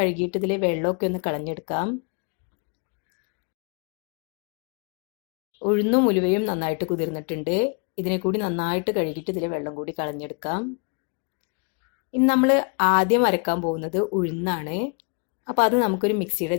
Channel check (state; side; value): quieter; right; 35.5 dB